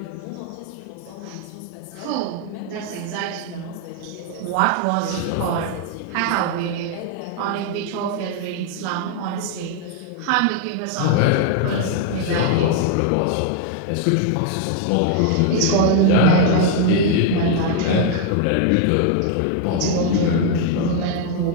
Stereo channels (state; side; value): different; both; correlation 0.00